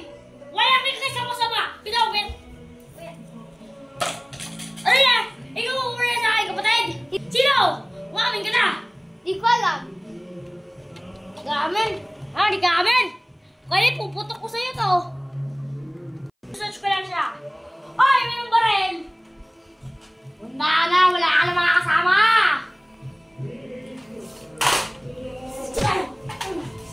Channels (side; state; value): both; identical; correlation 1.00